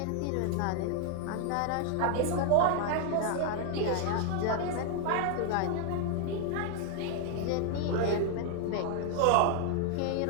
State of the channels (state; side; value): different; both; correlation 0.00